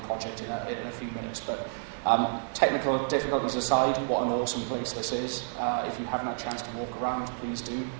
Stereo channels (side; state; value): left; silent; digital silence